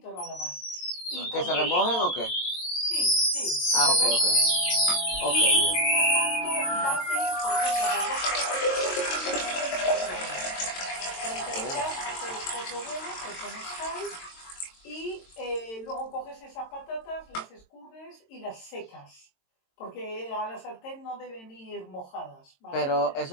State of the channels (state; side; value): late; right; 22 ms